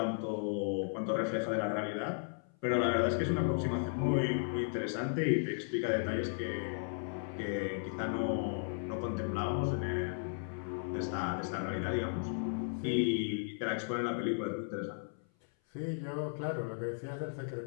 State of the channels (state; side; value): silent; right; 54 dB below the other